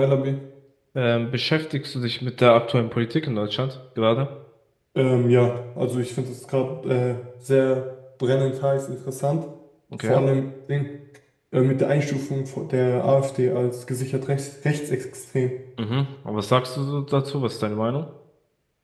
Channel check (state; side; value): identical; both; correlation 1.00